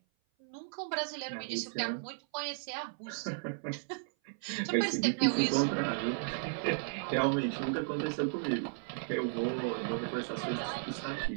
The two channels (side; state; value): left; silent; 55 dB below the other